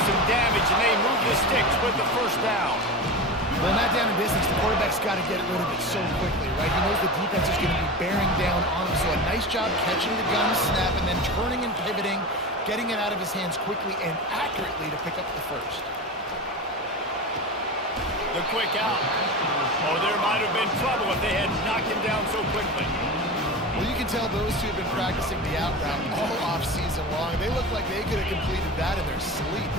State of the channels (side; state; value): both; normal; correlation 0.27